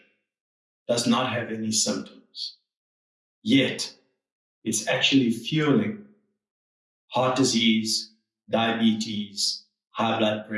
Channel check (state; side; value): identical; both; correlation 1.00